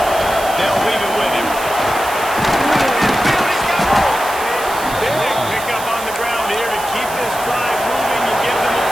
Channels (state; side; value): noise; right; hiss, 12 dB below the sound